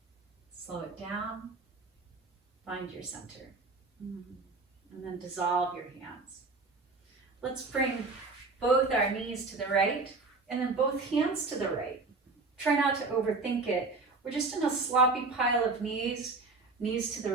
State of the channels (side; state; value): left; quieter; 3.8 dB